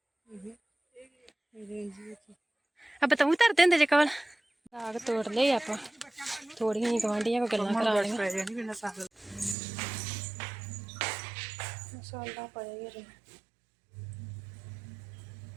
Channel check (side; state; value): left; drops out; at 9.6 s